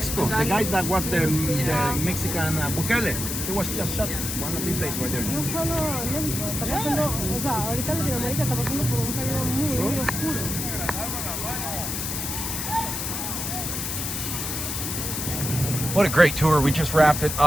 The guy that was the Mexican Bukele, he was just shot one of these days right there. No solo en México, está pasando, o sea, ahorita Latinoamérica está pasando por un periodo muy oscuro. What a great tour. We just wrapped it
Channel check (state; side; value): noise; left; hiss, 3 dB below the sound